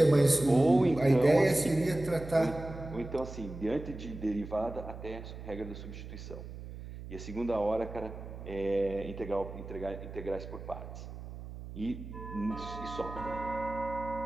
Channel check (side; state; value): right; noise; hum, 11 dB below the sound